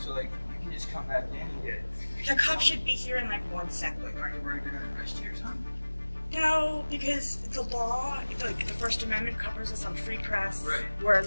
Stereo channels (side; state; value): both; inverted; correlation -1.00